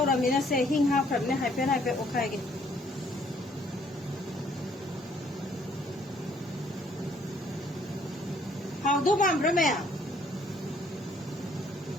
ramina se hing ha pram ne hai pe okhai ge hau do bam brame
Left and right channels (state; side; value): normal; both; correlation 0.64